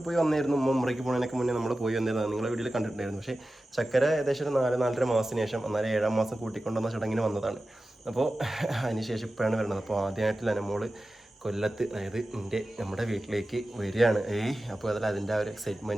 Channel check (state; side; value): normal; both; correlation 0.94